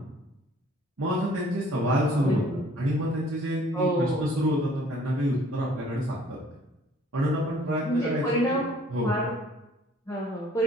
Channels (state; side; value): normal; both; correlation 0.56